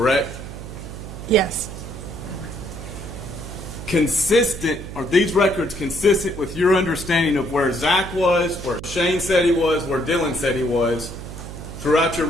Yes. Are these records consistent with your understanding of where Zach was, where Shane said he was, where Dylan said he was throughout your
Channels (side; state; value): right; noise; hum, 11 dB below the sound